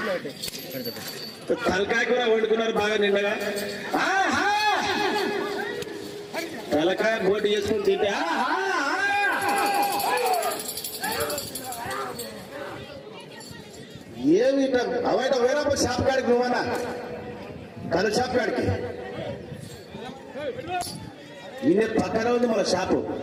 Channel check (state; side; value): identical; both; correlation 1.00